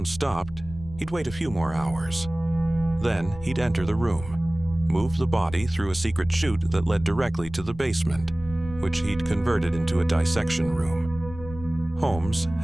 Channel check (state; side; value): noise; left; rumble, 14 dB below the sound